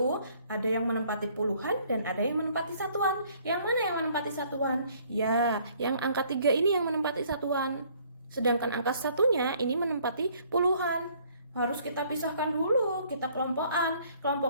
ada yang menempati puluhan dan ada yang menempati satuan. Yang mana yang menempati satuan? Ya, yang angka 3 ini yang menempati satuan. Sedangkan angka satunya ini menempati puluhan. Harus kita pisahkan dulu, kita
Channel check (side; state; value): both; inverted; correlation -0.61